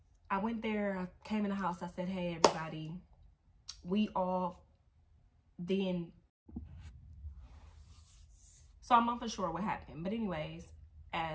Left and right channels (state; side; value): identical; both; correlation 1.00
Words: I went there, I came in the house, I said, hey, everybody, we all then. So I'm not for sure what happened. But anyways,